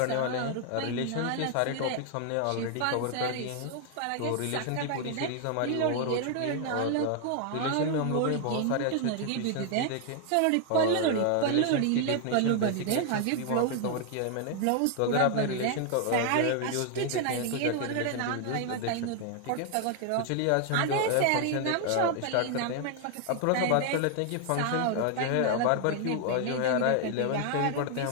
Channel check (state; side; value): different; both; correlation 0.00